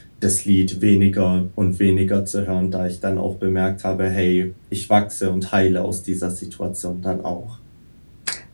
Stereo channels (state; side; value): inverted; both; correlation -1.00